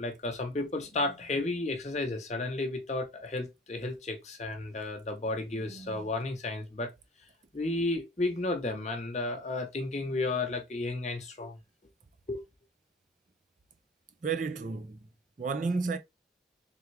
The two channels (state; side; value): normal; both; correlation 0.43